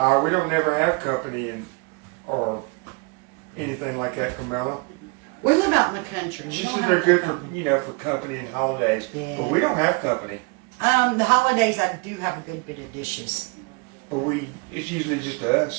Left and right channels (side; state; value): left; quieter; 30.6 dB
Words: We don't never have company or anything like that, Camilla. We live out in the country. We She don't said have they're good company. for for company and holidays, Yeah. but we don't have company. The holidays, I do have a good bit of dishes. But it's usually just